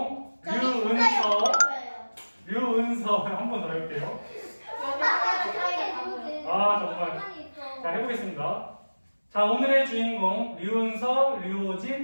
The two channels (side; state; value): both; inverted; correlation -1.00